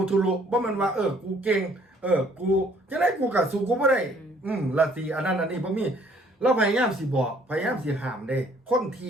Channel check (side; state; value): both; normal; correlation 0.60